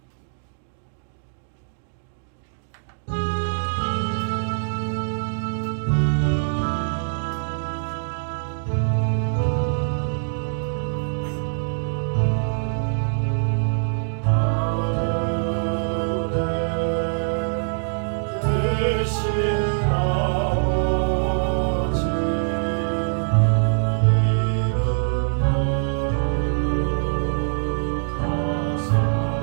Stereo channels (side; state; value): left; silent; digital silence